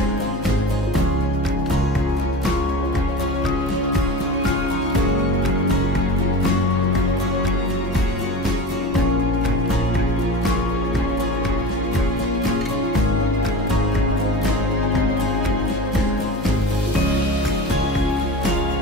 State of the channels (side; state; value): both; normal; correlation 0.33